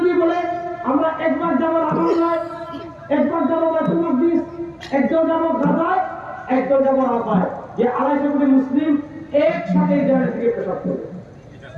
বলে আমরা একবার যাবো রাফায়, একবার যাবো বাইতুল মাকদিস, একজন যাবো গাজায়, একজন যাবো রাফায়, যে ২৫০ কোটি মুসলিম একসাথে এই জায়গা থেকে পেশাব করবে।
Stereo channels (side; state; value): both; identical; correlation 1.00